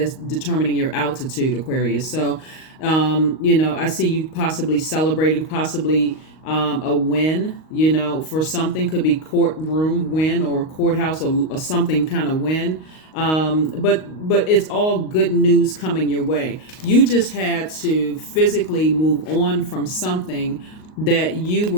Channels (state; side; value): late; right; 38 ms